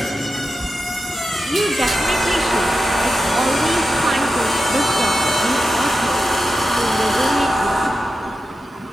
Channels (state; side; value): normal; both; correlation 0.91